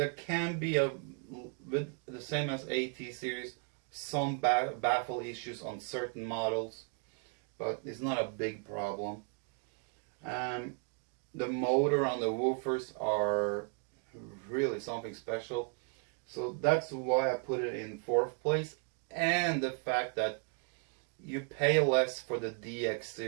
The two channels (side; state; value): left; quieter; 38.8 dB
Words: can be, with the same as AT series, some baffle issues on certain models, but it's not a big problem. The motor on the woofers are really something special, so that's why I put it in 4th place. And the fact that you pay less for the DX